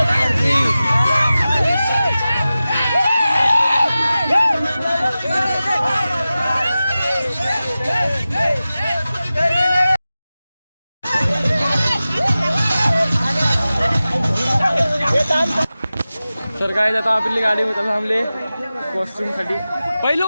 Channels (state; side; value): inverted; both; correlation -0.95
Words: तर काय आता आपली गाडी थांबले वॉशरूम साठी.